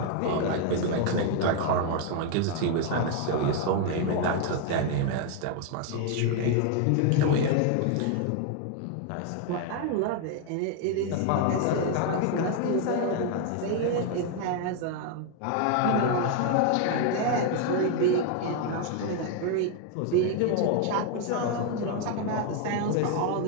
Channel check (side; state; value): both; different; correlation 0.01